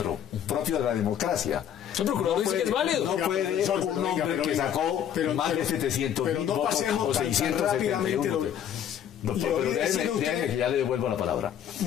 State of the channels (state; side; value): quieter; right; 9.5 dB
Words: propio de la democracia. El procurador dice que es válido. No puede un hombre que sacó más de 700.000 votos o 671. No, pero déjenme que ya le devuelvo la palabra.